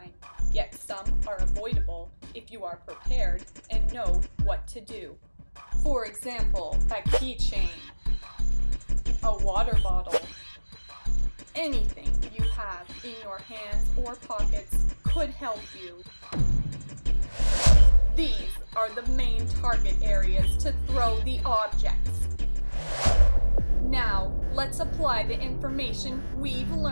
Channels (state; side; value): inverted; both; correlation -1.00